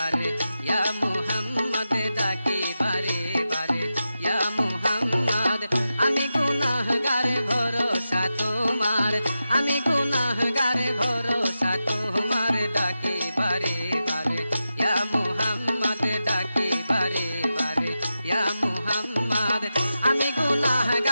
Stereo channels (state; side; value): inverted; both; correlation -0.91